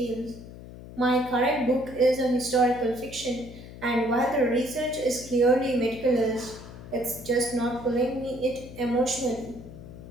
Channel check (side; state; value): left; noise; hum, 15 dB below the sound